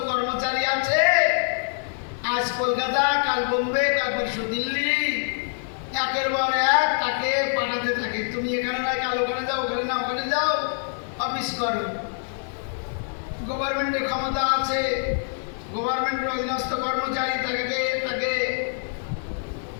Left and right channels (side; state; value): right; silent; 62 dB below the other